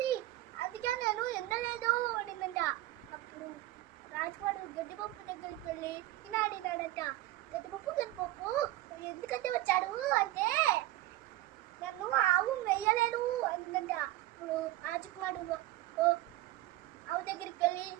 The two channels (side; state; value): left; quieter; 16.7 dB